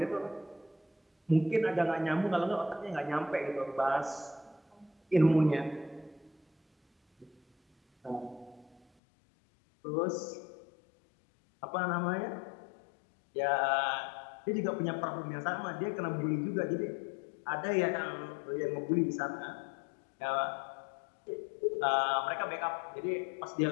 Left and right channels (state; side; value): drops out; right; at 8.8 s